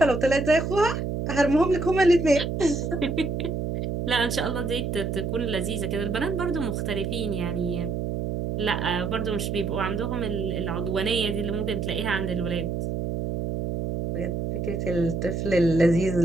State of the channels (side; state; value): right; noise; hum, 2 dB below the sound